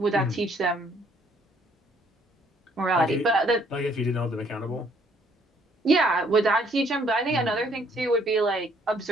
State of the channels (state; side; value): normal; both; correlation 0.64